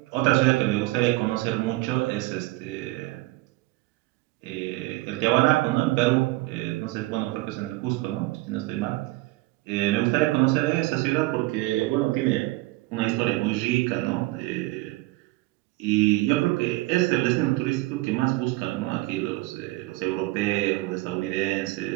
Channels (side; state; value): left; quieter; 20.1 dB